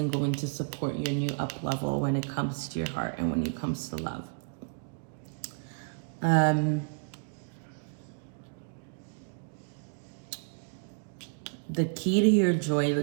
going to support your new up level when it comes to your heart and when it comes to love. The key to your joy,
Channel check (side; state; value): left; silent; digital silence